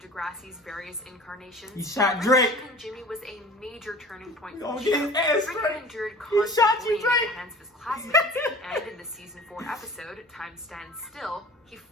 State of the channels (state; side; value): normal; both; correlation 0.43